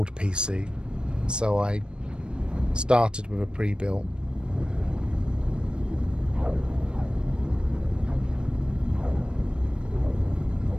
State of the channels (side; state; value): left; late; 0.054 ms